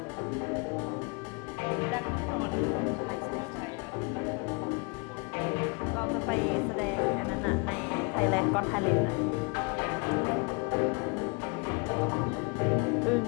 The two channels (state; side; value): quieter; right; 31.9 dB